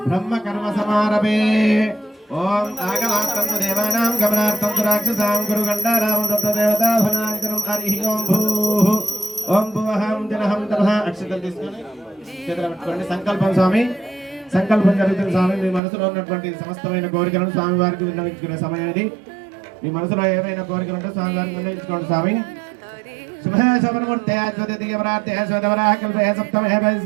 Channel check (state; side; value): drops out; left; at 15.8 s